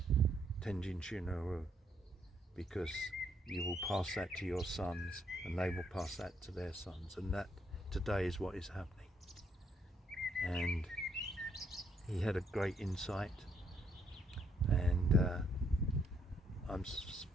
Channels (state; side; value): normal; both; correlation 0.72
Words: Tenjin Shinyo Ryu, because you will pass that to your sons and they will pass that to their sons, and that today is what is happening. And he had a great insight, and I'm